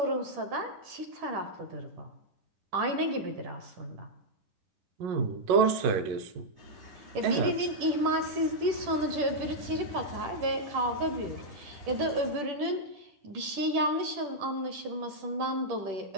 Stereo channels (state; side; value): late; left; 10 ms